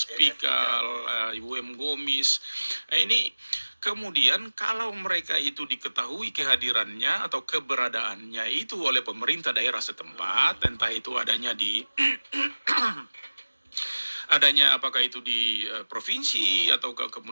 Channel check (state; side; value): inverted; both; correlation -1.00